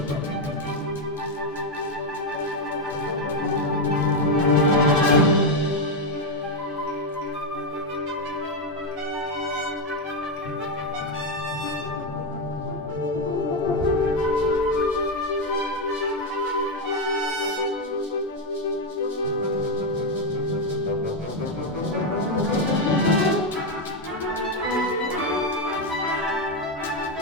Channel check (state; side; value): normal; both; correlation 0.05